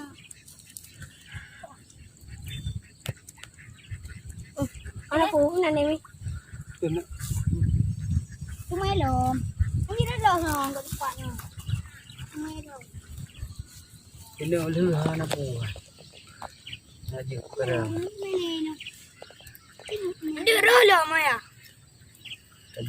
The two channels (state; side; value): identical; both; correlation 1.00